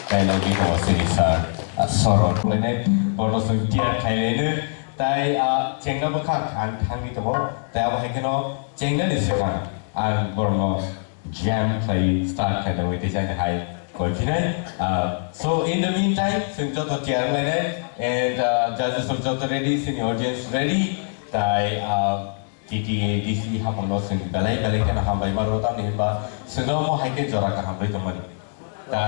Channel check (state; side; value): silent; right; digital silence